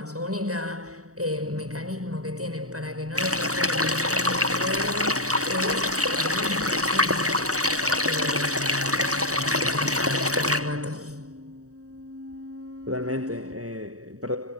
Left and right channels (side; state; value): left; late; 0.66 ms